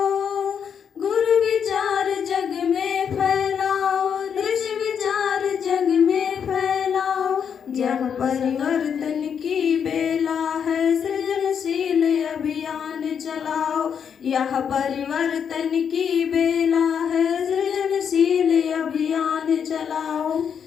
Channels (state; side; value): quieter; right; 7.5 dB